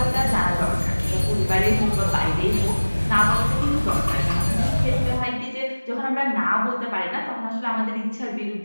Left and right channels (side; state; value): both; inverted; correlation -1.00